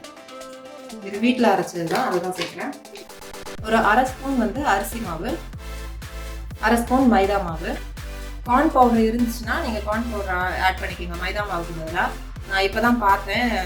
இது வீட்டில் அரைச்சது தான், அதுதான் சேர்க்குறேன். ஒரு அரை ஸ்பூன் வந்து அரிசி மாவு, அரை ஸ்பூன் மைதா மாவு. கார்ன் பவுடர் இருந்துச்சுன்னா நீங்கள் கார்ன் பவுடர் ஆட் பண்ணிக்கோங்க மைதா மாவுக்கு பதிலாக. நான் இப்போ தான் பார்த்தேன்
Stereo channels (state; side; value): identical; both; correlation 1.00